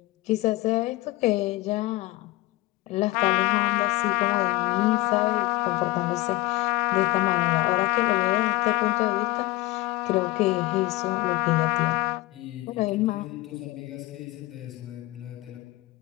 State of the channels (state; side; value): quieter; right; 20.9 dB